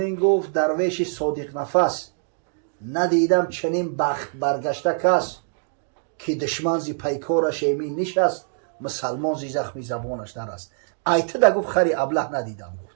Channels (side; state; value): left; silent; digital silence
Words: گفت درویش صادق نفس ندیدم چنین بخت برگشته کس، که دشمن زی پیکارش ایمین نشست مسلمان زی زخمی زبانش نرست. ایته دا گفت خری ابله ندیدم، گفت